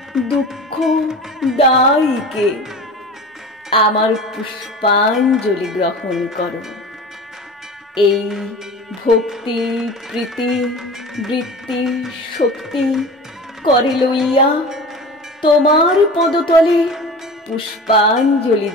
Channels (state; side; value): normal; both; correlation 0.35